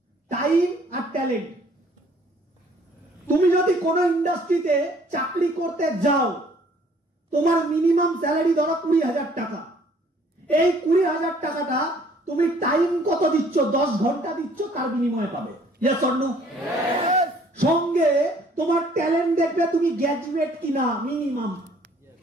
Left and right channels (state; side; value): normal; both; correlation 0.59